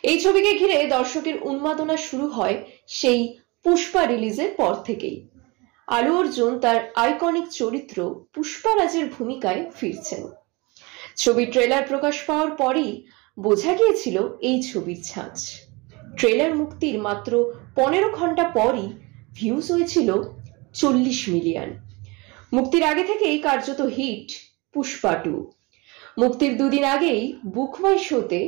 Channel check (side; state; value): left; quieter; 26.0 dB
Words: এই ছবিকে ঘিরে দর্শকের উন্মাদনা শুরু হয় সেই পুষ্পা রিলিজের পর থেকেই। আলু অর্জুন তার আইকনিক চরিত্র পুষ্পারাজের ভূমিকায় ফিরছেন। ছবির ট্রেলার প্রকাশ পাওয়ার পরই বোঝা গিয়েছিল এই ছবির ছাঁচ। ট্রেলার মুক্তির মাত্র 15 ঘন্টা পরই ভিউজ হয়েছিল 40 মিলিয়ন। মুক্তির আগে থেকেই কার্যত হিট পুষ্পা 2। মুক্তির দুদিন আগেই বুক মাই শোতে